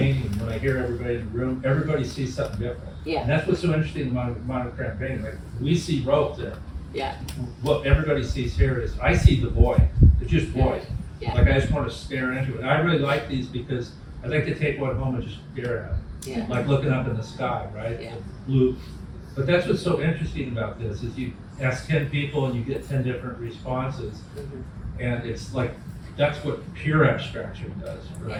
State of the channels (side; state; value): both; identical; correlation 1.00